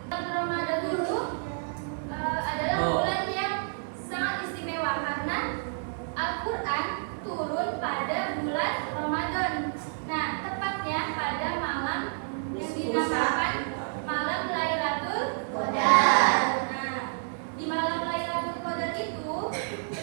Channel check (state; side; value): silent; left; digital silence